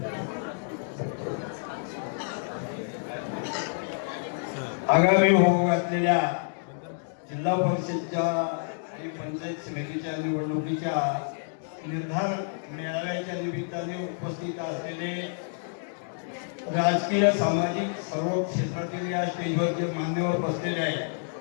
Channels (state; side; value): silent; right; digital silence